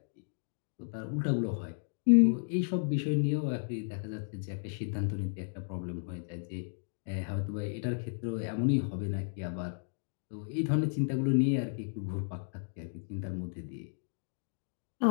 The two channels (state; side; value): silent; right; digital silence